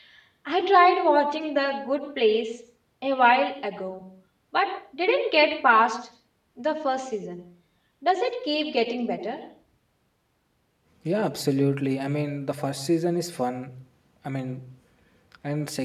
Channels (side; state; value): both; identical; correlation 1.00